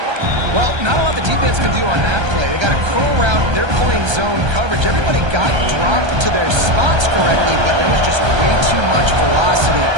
Well, not a lot the defense can do on that play. They got a curl route. They're playing zone coverage. Everybody got dropped to their spots correctly, but there was just way too much velocity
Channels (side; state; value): left; late; 1.3 ms